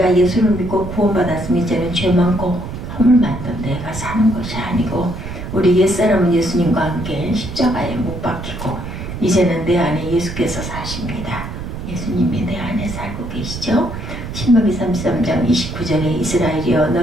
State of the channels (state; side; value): noise; right; rumble, 8 dB below the sound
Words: 예수를 믿고 구원받았으면 이제는 죄 많고 허물 많던 내가 사는 것이 아니고 우리 옛사람은 예수님과 함께 십자가에 못 박히고 이제는 내 안에 예수께서 사십니다. 예수님이 내 안에 살고 계시죠. 신명기 33장 29절에 이스라엘이여